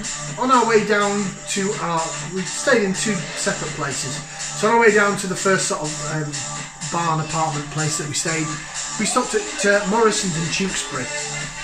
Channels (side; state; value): both; identical; correlation 1.00